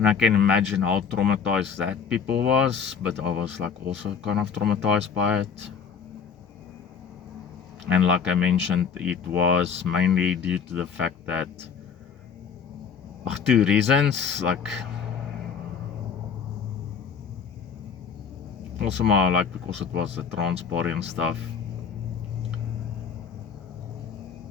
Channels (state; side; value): quieter; right; 6.5 dB